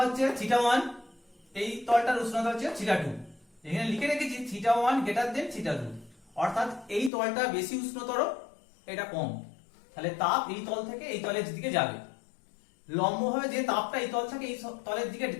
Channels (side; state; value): right; drops out; at 7.1 s